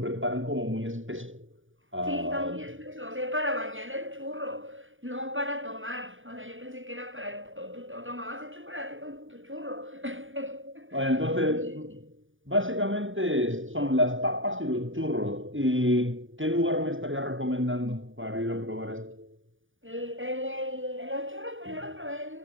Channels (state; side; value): late; left; 0.57 ms